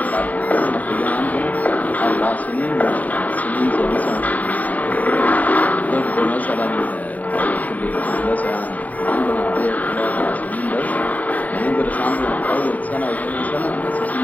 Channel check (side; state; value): right; late; 0.074 ms